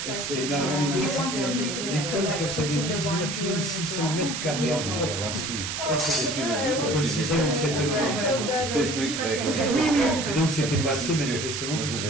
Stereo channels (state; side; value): noise; right; hiss, 4 dB below the sound